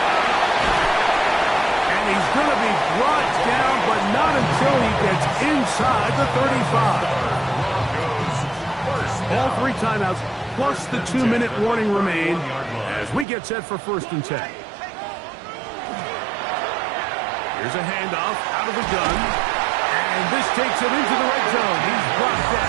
And he's going to be brought down, but not until he gets inside the 35. All 3 timeouts, plus the 2-minute warning remain as we get set for 1st and 10. Here's a handoff out of the gun. And this takes him into the red zone. He's brought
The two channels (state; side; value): drops out; left; at 13.2 s